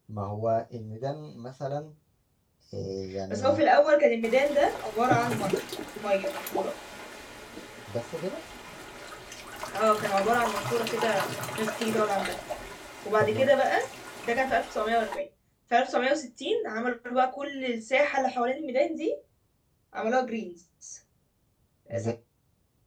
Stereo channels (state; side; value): identical; both; correlation 1.00